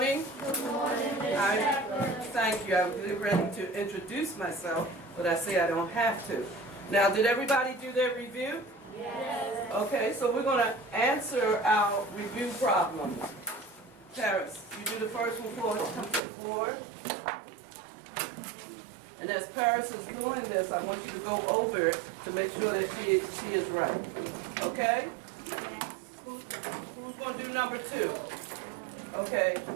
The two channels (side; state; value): left; drops out; at 16.2 s